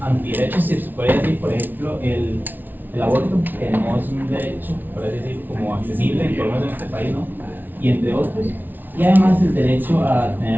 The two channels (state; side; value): late; left; 0.088 ms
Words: si se puede decir, por ejemplo, el aborto, que no es un derecho, por así decir, como accesible, por lo menos en este país, ¿no? Y entre otros. Y además el derecho a